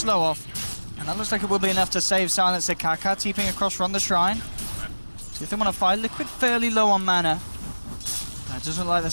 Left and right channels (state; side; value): inverted; both; correlation -1.00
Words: off. And that looks like it will be enough to save Silencer Kaka, teeping across from the shrine. See if they want to fight. Liquid fairly low on mana. That doesn't look like